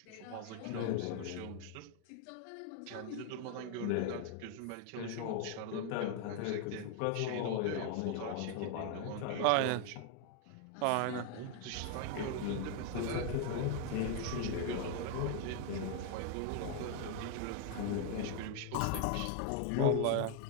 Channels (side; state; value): both; different; correlation 0.00